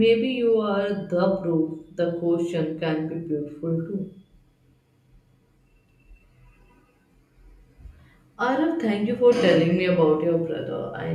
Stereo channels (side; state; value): both; identical; correlation 1.00